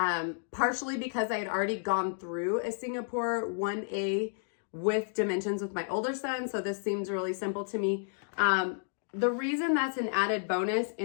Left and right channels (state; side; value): silent; right; digital silence